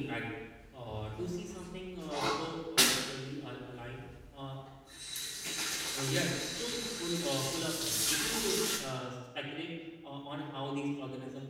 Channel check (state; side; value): identical; both; correlation 1.00